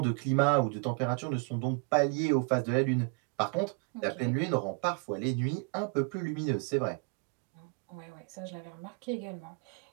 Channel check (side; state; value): left; quieter; 36.2 dB